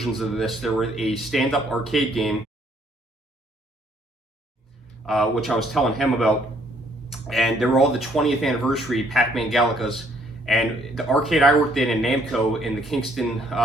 of this. There were a stand-up arcade game, which I was telling him about, and there were all the 20th anniversary Pac-Man Galacas. And the arcade I worked in Namco in Kingston,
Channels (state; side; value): normal; both; correlation 0.65